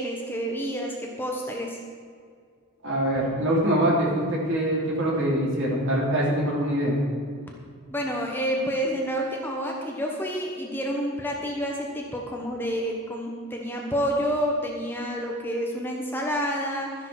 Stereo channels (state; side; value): normal; both; correlation 0.35